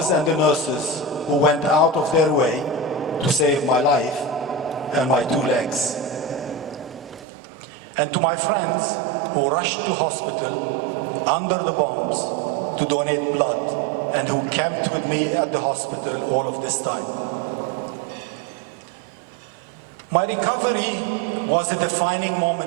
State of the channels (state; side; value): drops out; left; at 7.2 s